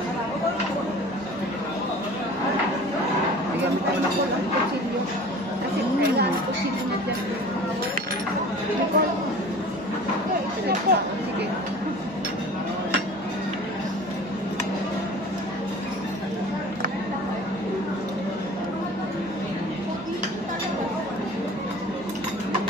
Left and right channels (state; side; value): normal; both; correlation 0.42